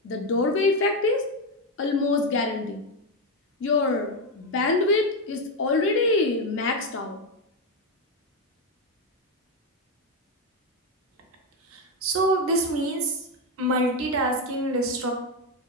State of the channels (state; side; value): normal; both; correlation 0.08